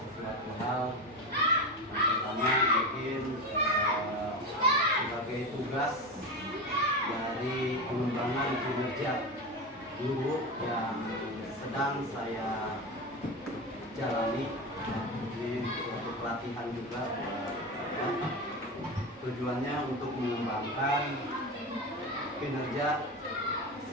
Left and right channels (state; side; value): normal; both; correlation 0.21